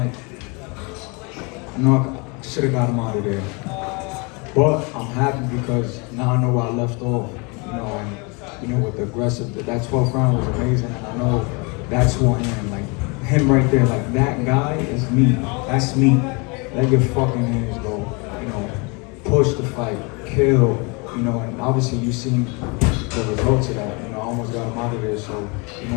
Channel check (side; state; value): right; quieter; 30.2 dB